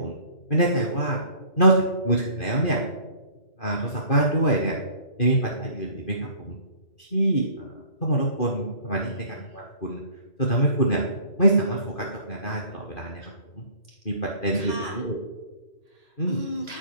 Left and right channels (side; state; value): right; late; 2.5 ms